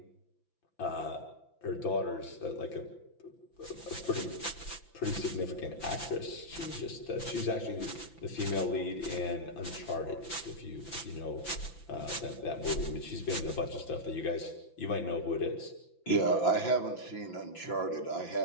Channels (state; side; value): late; right; 5.9 ms